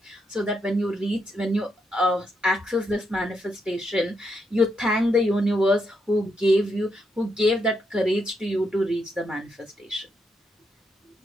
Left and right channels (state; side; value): normal; both; correlation 0.80